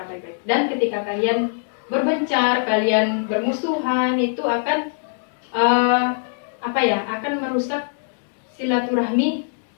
baik-baik. Dan ketika kalian berbencar, kalian bermusuhan, itu akan akan merusak silaturahmi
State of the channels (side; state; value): right; silent; digital silence